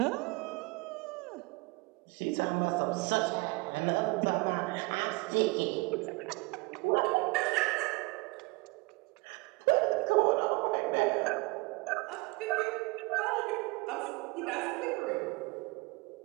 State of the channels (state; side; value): quieter; left; 26.5 dB